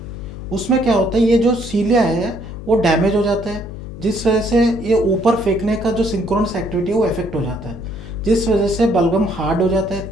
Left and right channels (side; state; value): left; noise; hum, 11 dB below the sound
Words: उसमें क्या होता है, ये जो सीलिया है वो डैमेज हो जाता है, जिस वजह से ये ऊपर फेंकने का जो सिंक्रोनस एक्टिविटी है वो इफेक्ट हो जाता है, जिस वजह से बलगम हार्ड हो जाता है,